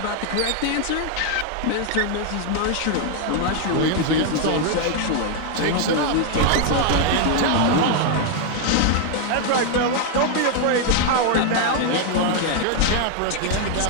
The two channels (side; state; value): both; different; correlation 0.00